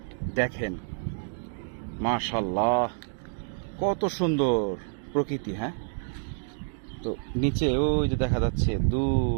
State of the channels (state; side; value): silent; left; digital silence